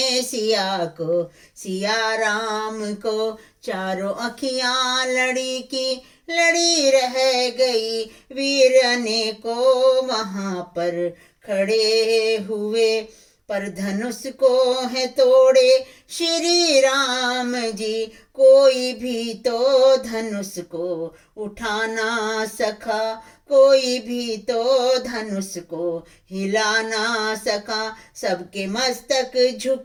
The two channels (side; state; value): both; identical; correlation 1.00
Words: सिया को, सिया राम को, चारों अखियां लड़ी की लड़ी रह गई। वीर अनेकों वहां पर खड़े हुए, पर धनुष को है तोड़े श्री राम जी। कोई भी तो धनुष को उठा ना सका, कोई भी तो धनुष को हिला ना सका, सबके मस्तक